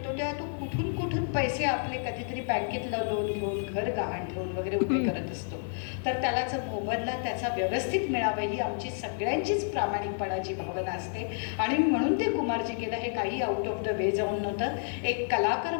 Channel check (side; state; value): right; silent; digital silence